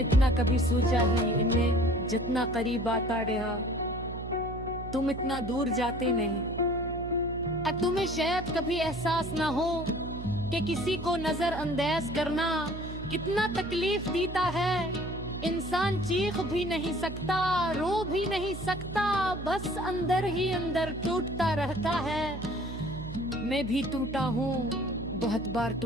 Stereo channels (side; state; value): right; noise; hum, 9 dB below the sound